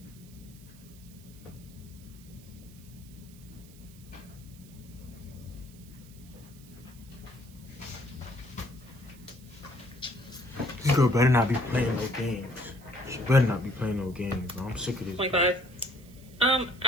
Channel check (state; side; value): noise; right; hiss, 23 dB below the sound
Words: This girl better not be playing no games. She better not be playing no games, bro. I'm sick of this. 25.